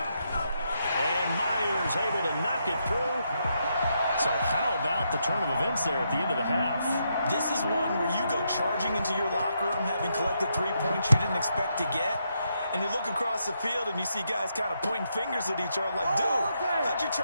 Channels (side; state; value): both; inverted; correlation -0.80